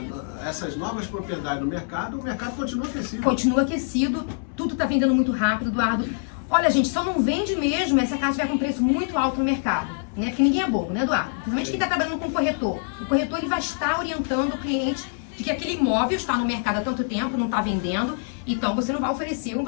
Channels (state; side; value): silent; right; 62 dB below the other